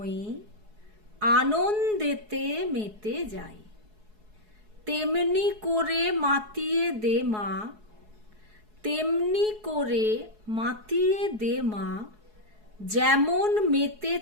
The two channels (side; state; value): left; late; 4.7 ms